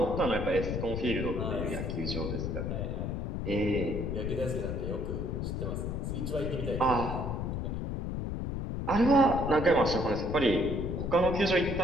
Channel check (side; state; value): left; noise; rumble, 3 dB below the sound